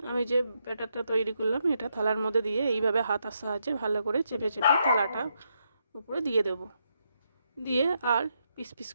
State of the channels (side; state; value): both; inverted; correlation -0.80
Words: আমি যে ব্যাটারটা তৈরি করলাম এটা থালার মধ্যে দিয়ে এইভাবে হাতার সাহায্যে ভালো করে চেপে চেপে থালাটা উপরে দিয়ে দেব। দিয়ে আর পিস পিস